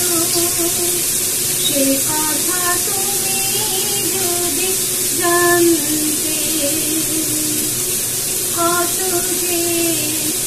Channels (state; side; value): identical; both; correlation 1.00